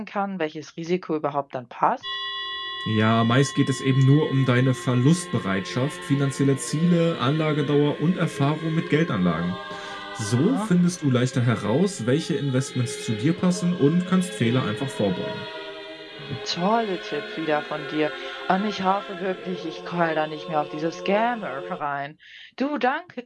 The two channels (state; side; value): identical; both; correlation 1.00